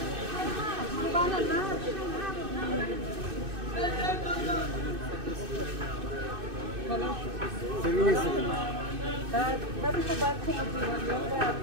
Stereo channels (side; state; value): left; late; 2.6 ms